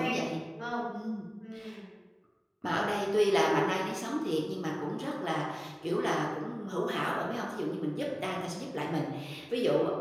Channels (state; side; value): identical; both; correlation 1.00